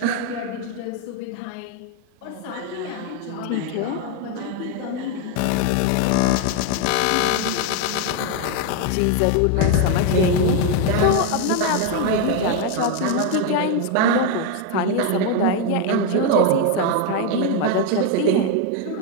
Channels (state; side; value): different; both; correlation 0.01